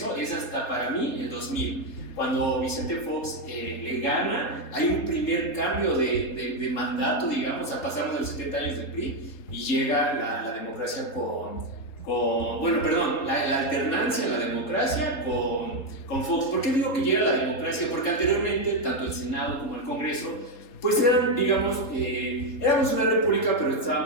es hasta para mí el 2000. Cuando Vicente Fox le gana, hay un primer cambio de mandato, digamos, pasamos de los 70 años del PRI y llega la democracia la alternancia en la democracia con Fox. ¿Por qué digo que llega la democracia? Porque anteriormente, tanto el Senado como el Congreso, pues eran, digamos, éramos una república, pero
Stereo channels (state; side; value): late; right; 3.6 ms